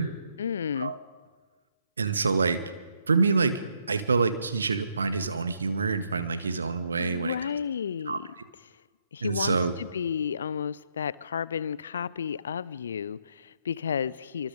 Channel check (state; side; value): inverted; both; correlation -0.75